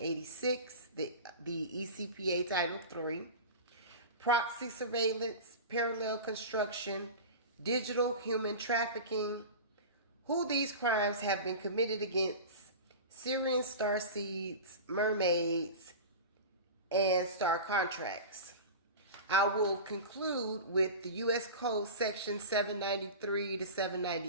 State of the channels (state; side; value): inverted; both; correlation -0.30